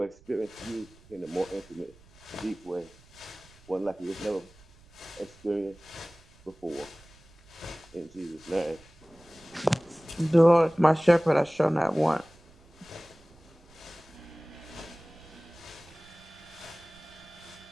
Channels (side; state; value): right; noise; rumble, 26 dB below the sound